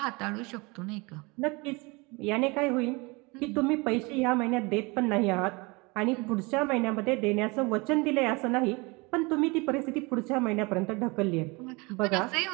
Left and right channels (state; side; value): quieter; left; 26.6 dB